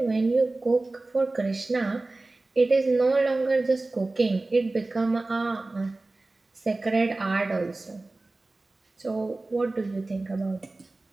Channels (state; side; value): quieter; left; 3.1 dB